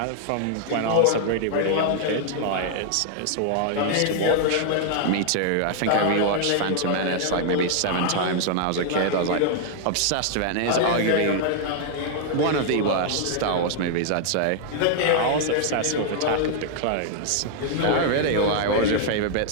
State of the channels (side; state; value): both; different; correlation -0.01